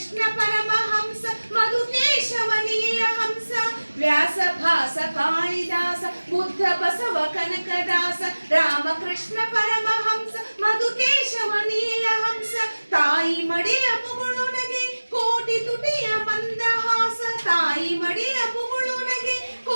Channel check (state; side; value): inverted; both; correlation -1.00